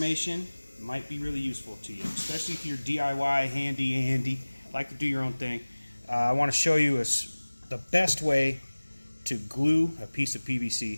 might be really useful to you, especially if you're DIY, handy, like to do your own thing. I want to show you the best way to glue a piece of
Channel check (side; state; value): both; inverted; correlation -1.00